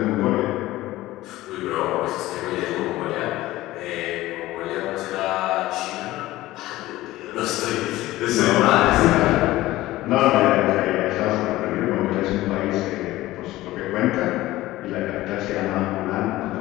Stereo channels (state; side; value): quieter; right; 17.0 dB